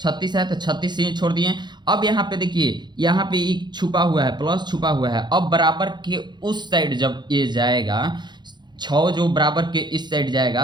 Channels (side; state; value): left; late; 0.21 ms